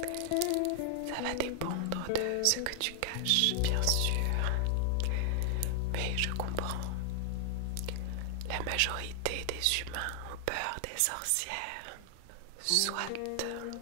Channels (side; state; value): both; different; correlation 0.00